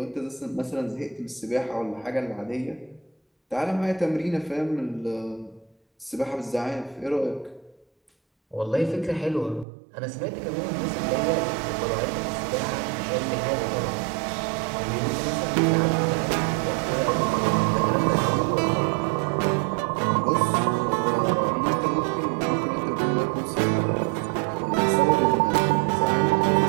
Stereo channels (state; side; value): drops out; left; at 9.7 s